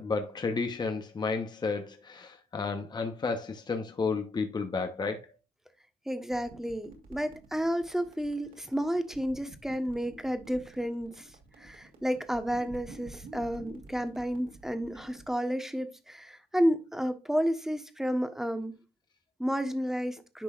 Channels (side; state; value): both; normal; correlation 0.89